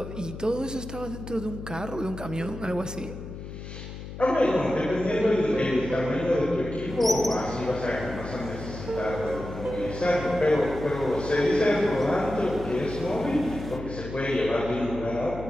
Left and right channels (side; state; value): left; noise; hum, 10 dB below the sound